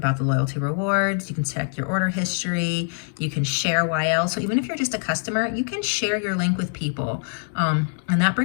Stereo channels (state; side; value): silent; right; 60 dB below the other